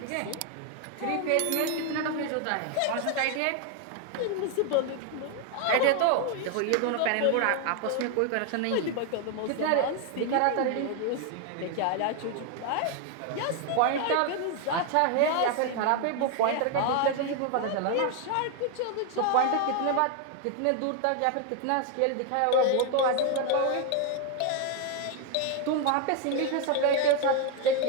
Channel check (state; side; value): different; both; correlation 0.01